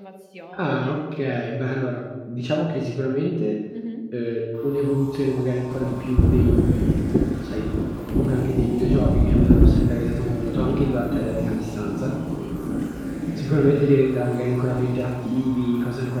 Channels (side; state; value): both; identical; correlation 1.00